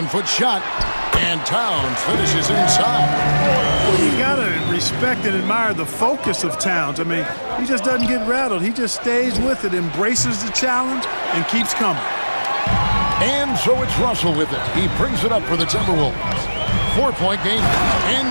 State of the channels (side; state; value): both; inverted; correlation -1.00